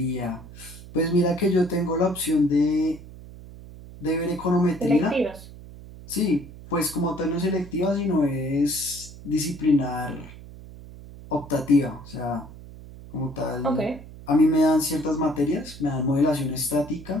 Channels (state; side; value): noise; right; hum, 16 dB below the sound